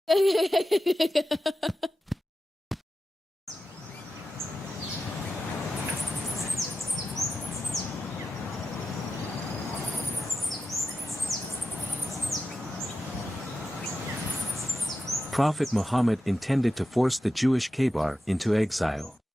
Prophet Muhammad intended to force the Jewish Kabar into exile.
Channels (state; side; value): normal; both; correlation 0.91